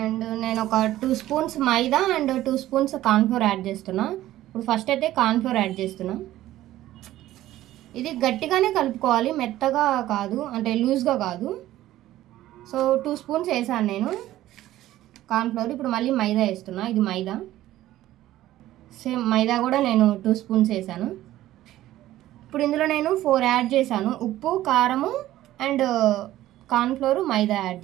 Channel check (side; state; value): left; quieter; 14.5 dB